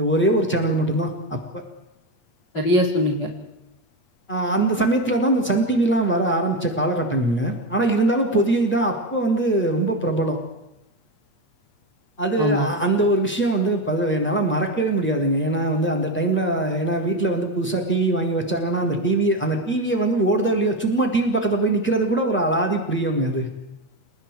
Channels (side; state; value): right; late; 8.4 ms